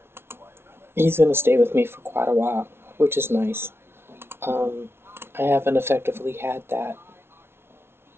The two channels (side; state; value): left; late; 0.12 ms